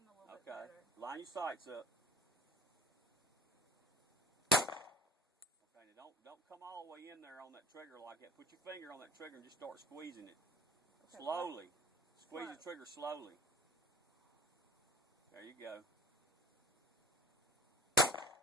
a little bit Okay. better. Line your sights up. Okay. Now don't come all the way in there on that trigger like that. Put your finger on that trigger and just start squeezing it. Okay, Slowly. Squeeze Slow. the trigger slowly. There you go. That's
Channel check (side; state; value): both; normal; correlation 0.42